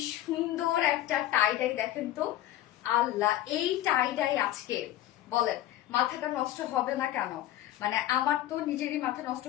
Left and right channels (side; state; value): right; quieter; 13.7 dB